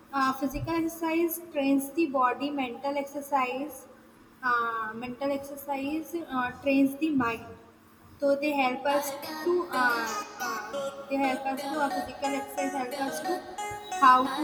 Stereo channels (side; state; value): both; identical; correlation 1.00